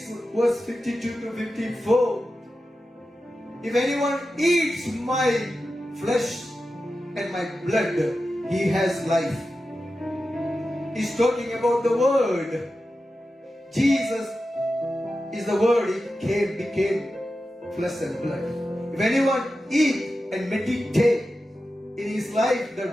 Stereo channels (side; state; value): both; normal; correlation 0.92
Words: verse 52 to 54, if anyone eats my flesh and my blood, he has life. He's talking about the word. Jesus is the word. He became flesh and blood. If anyone eat and meditate in his life, the